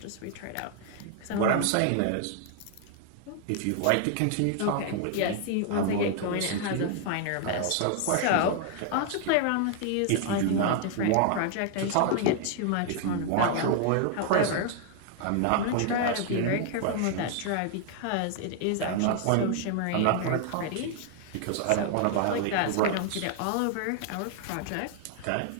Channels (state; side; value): different; both; correlation 0.00